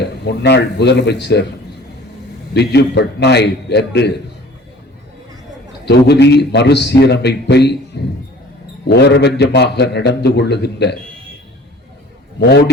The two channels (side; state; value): both; normal; correlation 0.48